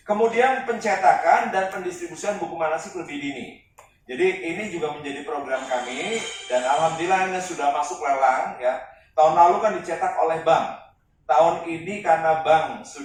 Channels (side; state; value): both; identical; correlation 1.00